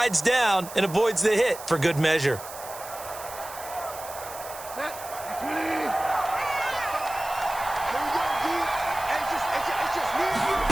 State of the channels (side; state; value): right; noise; hiss, 14 dB below the sound